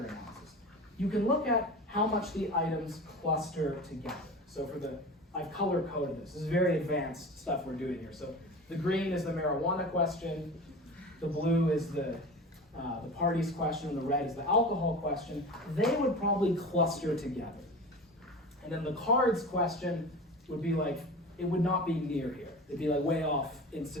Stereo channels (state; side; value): normal; both; correlation 0.33